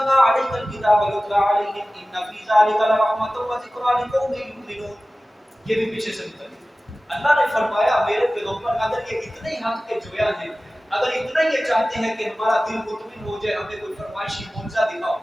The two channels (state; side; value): normal; both; correlation 0.97